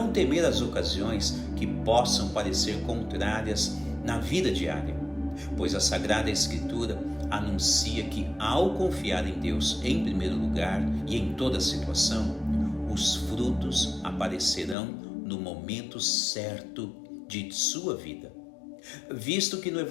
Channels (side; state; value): right; drops out; at 14.8 s